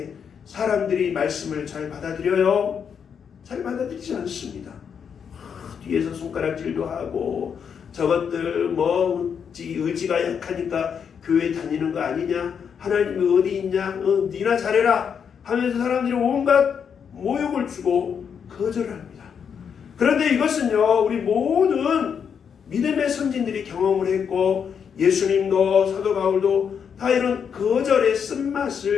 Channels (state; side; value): quieter; right; 7.2 dB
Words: 사람들이 말씀을 잘 받아들여요? 잘 받아들이지 않습니다. 뒤에서 손가락질도 하고 저것들 의지가 약하니까 교회 다니는 거 아니냐, 하나님이 어디 있냐, 니나 잘해라 하면서 사람들이 온갖 모욕을 주고 거절합니다. 그런데 이것은요, 우리 모든 믿음의 선진들이 경험을 했고 예수님도 사도 바울도 다 이런 거절의